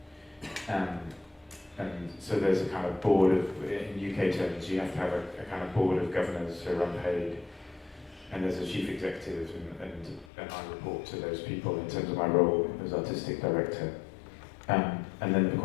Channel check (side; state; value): right; drops out; at 10.3 s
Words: And so there's a kind of board of, in UK terms, you have to have a kind of board of governors who are unpaid, and there's a chief executive, and I report to those people in terms of my role as artistic director. And then, of